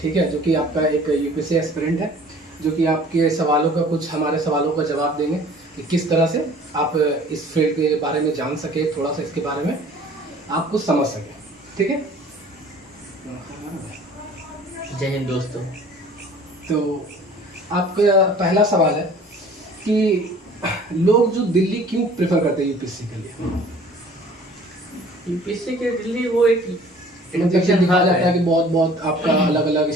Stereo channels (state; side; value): normal; both; correlation 0.50